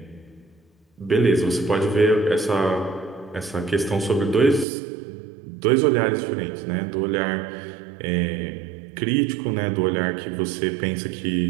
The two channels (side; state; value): left; drops out; at 4.7 s